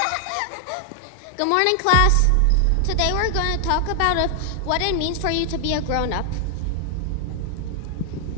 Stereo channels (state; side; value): different; both; correlation 0.00